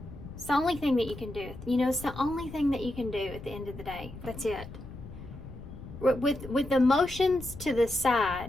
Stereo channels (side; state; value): left; noise; rumble, 13 dB below the sound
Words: It's the only thing that you can do. You know, it's the only thing that you can do at the end of the day. That's it. With emotions to the